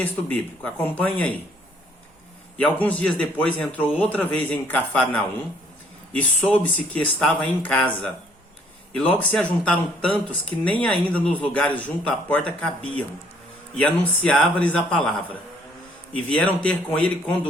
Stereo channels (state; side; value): normal; both; correlation 0.63